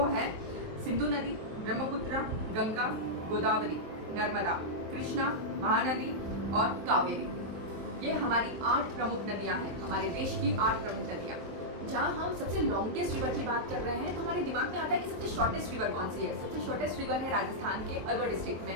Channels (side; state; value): left; late; 23 ms